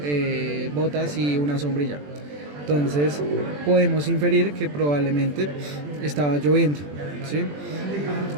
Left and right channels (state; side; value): late; left; 20 ms